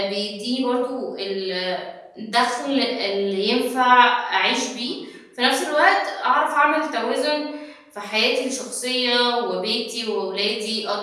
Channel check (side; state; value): both; identical; correlation 1.00